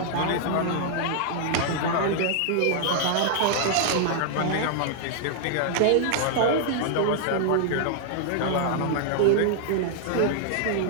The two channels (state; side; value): different; both; correlation -0.01